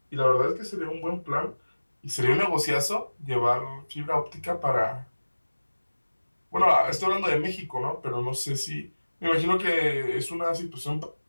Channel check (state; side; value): inverted; both; correlation -1.00